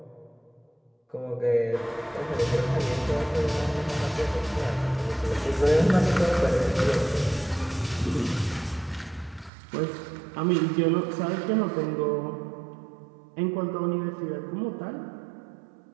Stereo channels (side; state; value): left; drops out; at 9.5 s